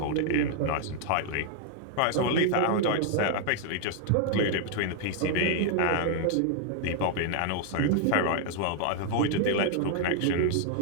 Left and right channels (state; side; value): different; both; correlation 0.00